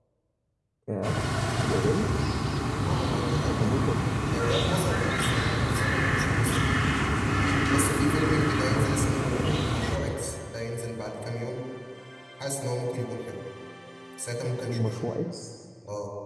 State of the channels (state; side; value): identical; both; correlation 1.00